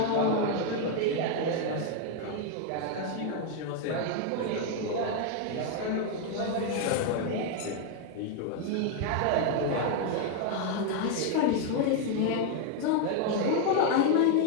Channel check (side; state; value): both; different; correlation 0.01